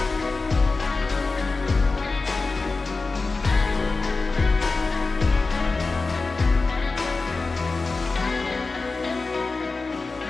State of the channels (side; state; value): right; quieter; 3.8 dB